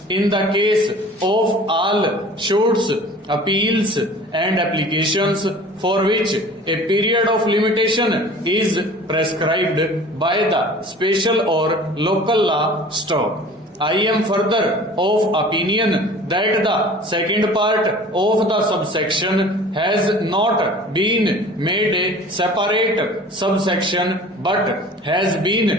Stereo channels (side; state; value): both; normal; correlation 0.44